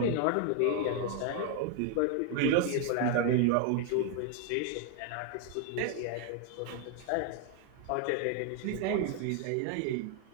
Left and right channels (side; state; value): both; different; correlation 0.00